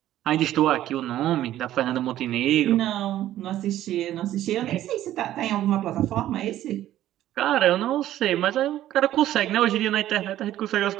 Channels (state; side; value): quieter; left; 13.1 dB